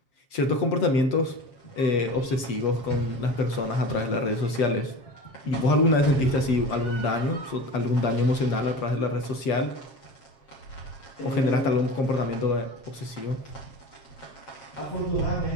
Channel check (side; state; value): right; late; 7.5 ms